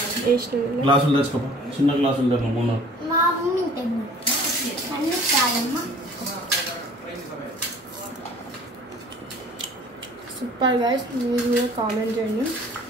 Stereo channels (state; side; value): normal; both; correlation 0.50